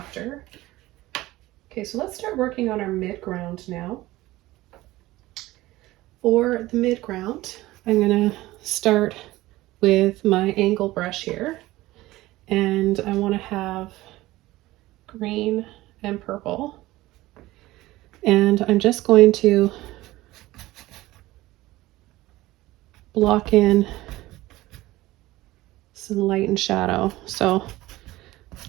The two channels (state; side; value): quieter; left; 17.8 dB